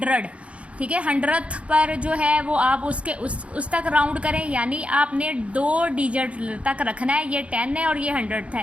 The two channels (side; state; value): left; late; 0.062 ms